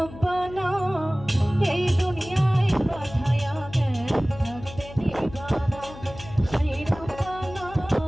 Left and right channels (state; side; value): noise; left; hum, 15 dB below the sound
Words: এই দুনিয়ায় পাঠায়া থাকতে দিবা না, সাই রব্বানা